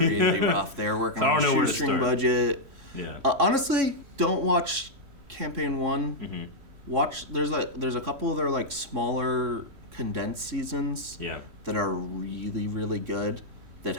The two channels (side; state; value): left; late; 3.1 ms